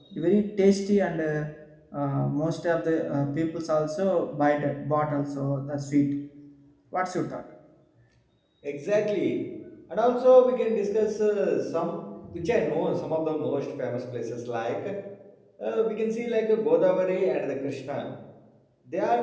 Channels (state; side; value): identical; both; correlation 1.00